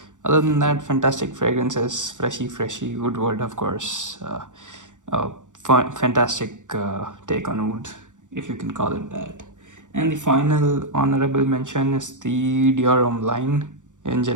Other than that, fantastic fragrances, freshy Woodward, of course. Fantastic take on wood, if you can call it that. And the final honorable mention is the Dior line in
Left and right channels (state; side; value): late; left; 0.86 ms